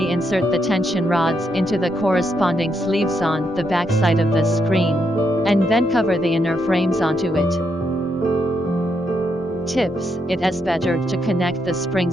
insert the tension rods into the corresponding sleeves on the back side of the screen, and then cover the inner frames onto it. Tips: it is better to connect the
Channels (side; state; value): both; normal; correlation 0.79